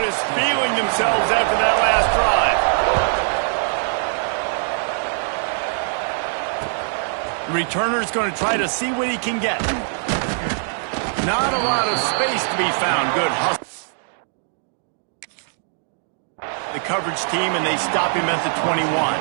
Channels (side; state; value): left; silent; digital silence